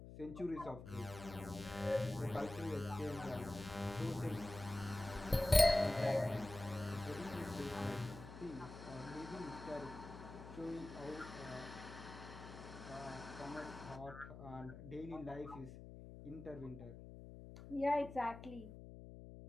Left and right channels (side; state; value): left; noise; hum, 13 dB below the sound